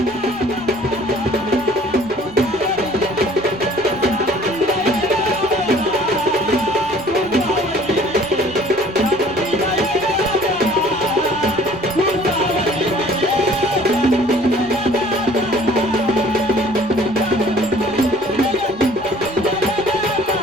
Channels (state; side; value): noise; left; rumble, 24 dB below the sound